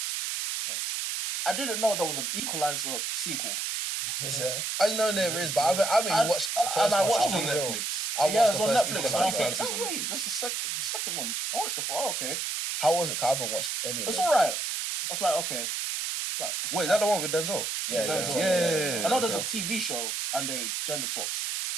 I didn't know there was an Equalizer sequel. Is there? I know there is, but I haven't even watched the first and I one. watched it on Real. Netflix. Yeah, it's on first Netflix. Equalizer. I was Equalizer. like, oh, wait, this is the second one. I watched it for, okay. How was it? 'Cause I haven't watched any of It's them. alright. I was like, okay. It's like, Wait, that the one with Denzel? Yeah, Denzel, yeah. I know there's a TV show and they gender swapped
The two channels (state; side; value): noise; right; hiss, 2 dB below the sound